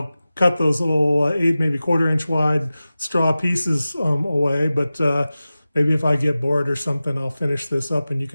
cut those little 8, maybe 1/4 inch wide straw pieces away. But maybe if I get bored or something, I'll finish this up and you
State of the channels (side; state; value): both; inverted; correlation -0.95